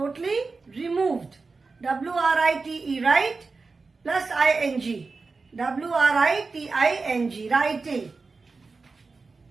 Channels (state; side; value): quieter; left; 4.1 dB